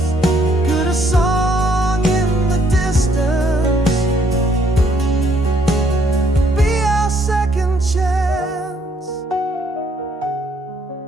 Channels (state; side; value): normal; both; correlation 0.67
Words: Could a song in the distance be our second chance?